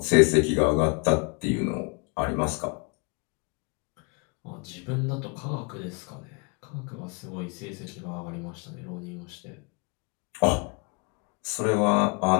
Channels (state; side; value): quieter; right; 31.6 dB